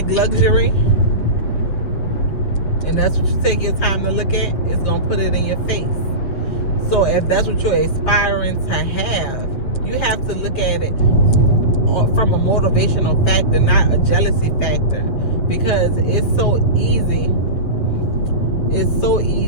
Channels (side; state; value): right; late; 7.8 ms